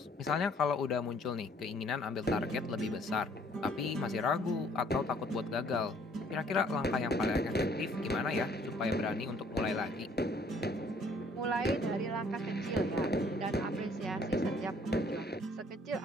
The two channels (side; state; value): both; normal; correlation 0.60